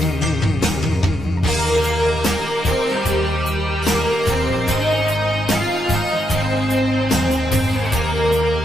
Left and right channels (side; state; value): both; normal; correlation 0.80